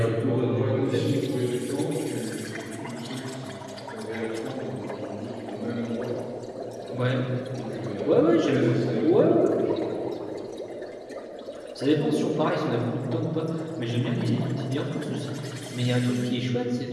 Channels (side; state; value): both; identical; correlation 1.00